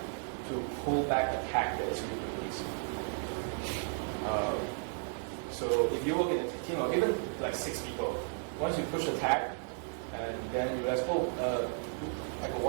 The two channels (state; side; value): silent; left; 55 dB below the other